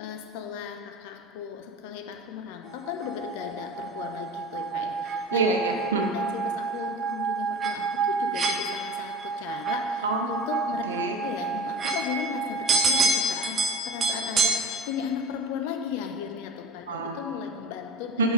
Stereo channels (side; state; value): both; normal; correlation 0.35